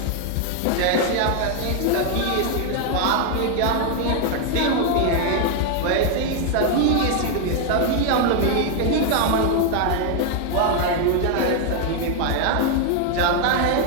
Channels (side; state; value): both; different; correlation 0.00